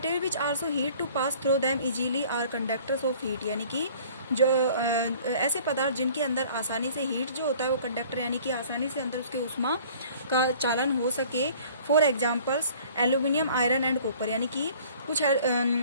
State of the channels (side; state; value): both; inverted; correlation -0.51